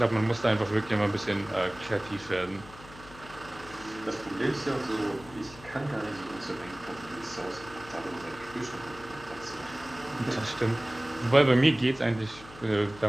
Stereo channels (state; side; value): noise; left; hum, 19 dB below the sound